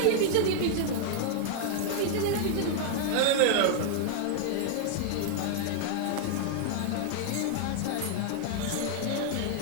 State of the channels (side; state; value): both; different; correlation 0.00